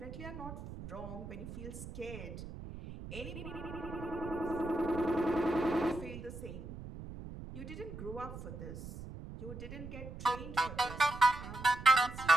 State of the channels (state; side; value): noise; right; rumble, 11 dB below the sound